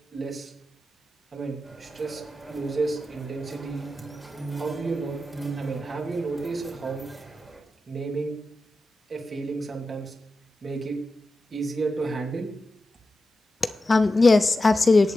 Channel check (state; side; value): normal; both; correlation 0.91